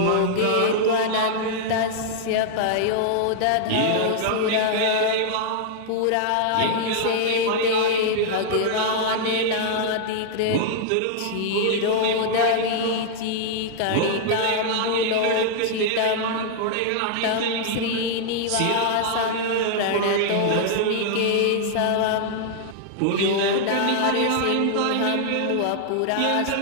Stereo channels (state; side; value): different; both; correlation -0.01